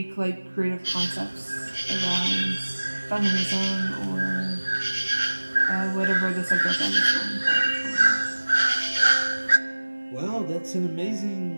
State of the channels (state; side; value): inverted; both; correlation -1.00